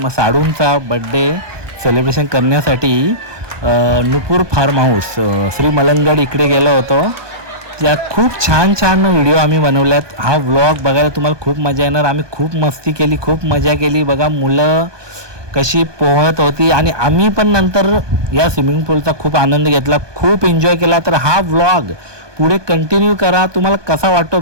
साडूंचा बड्डे सेलिब्रेशन करण्यासाठी नुपूर फार्म हाऊस श्री मलंगड इकडे गेलो होतो. त्यात खूप छान छान व्हिडिओ आम्ही बनवल्यात. हा व्लॉग बघायला तुम्हाला खूप मजा येणार. आम्ही खूप मस्ती केली, खूप मजा केली. बघा मुलं कशी पोहत होती आणि आम्ही पण नंतर या स्विमिंग पूलचा खूप आनंद घेतला, खूप एन्जॉय केला. तर हा व्लॉग पुढे कंटिन्यू करा. तुम्हाला कसा वाटतो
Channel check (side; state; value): left; late; 1.2 ms